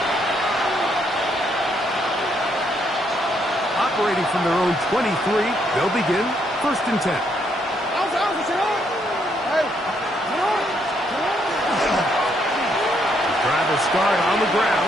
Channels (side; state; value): both; normal; correlation 0.73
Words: Operating from their own 23, they'll begin 1st and 10. Driver start on the